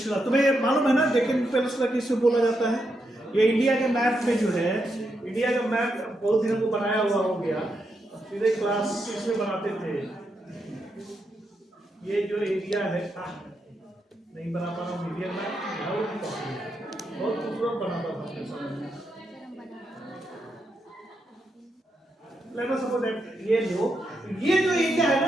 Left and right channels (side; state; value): both; normal; correlation 0.83